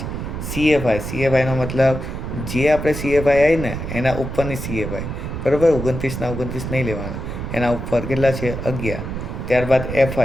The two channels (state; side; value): noise; right; rumble, 6 dB below the sound